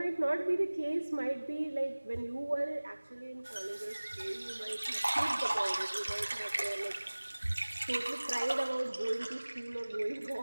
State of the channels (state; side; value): inverted; both; correlation -1.00